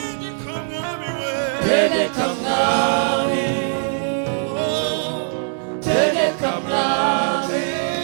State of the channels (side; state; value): left; silent; digital silence